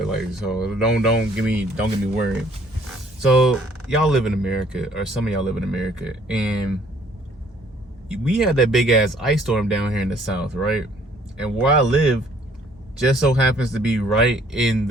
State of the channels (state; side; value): normal; both; correlation 0.61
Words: like, so don't get me worried. So y'all live in America, or some of y'all live in America, and we had that big ass ice storm down here in the South, right? And where I live just so happens to be right in